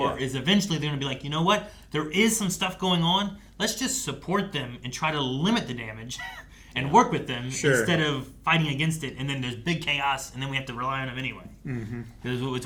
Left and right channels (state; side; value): identical; both; correlation 1.00